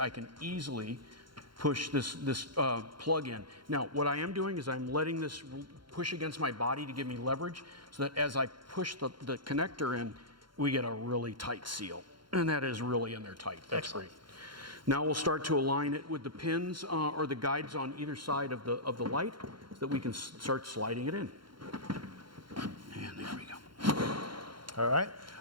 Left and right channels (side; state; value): left; late; 0.73 ms